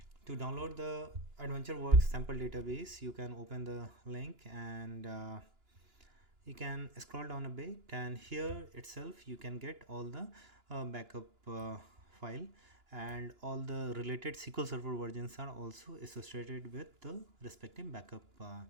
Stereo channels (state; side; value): late; left; 2.9 ms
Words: To download the AdventureWorks sample database, you can open the link and you can scroll down a bit, and here itself you can get all the backup file, and all the related SQL Server versions are also associated with the respective backup